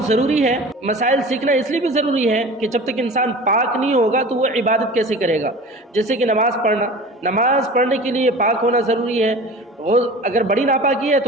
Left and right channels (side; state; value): both; normal; correlation 0.39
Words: ضروری ہے۔ مسائل سیکھنا اس لیے بھی ضروری ہے کہ جب تک انسان پاک نہیں ہوگا تو وہ عبادت کیسے کرے گا؟ جیسے کہ نماز پڑھنا، نماز پڑھنے کے لیے پاک ہونا ضروری ہے۔ اگر بڑی ناپاکی ہے